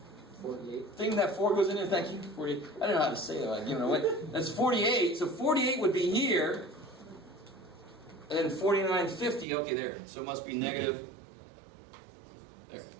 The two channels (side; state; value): left; drops out; at 9.5 s